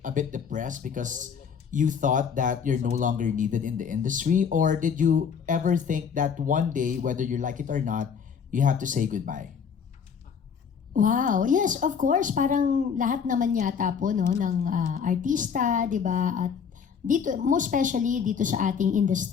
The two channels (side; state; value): right; quieter; 6.8 dB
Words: a bit depressed because you thought that you're no longer needed in the industry? Or did you ever think that one day, whether you like it or not, you have to say goodbye? Wow. Yes, of course. Parang lahat naman yata po no, ng artista, di ba? At dito, most especially dito sa ating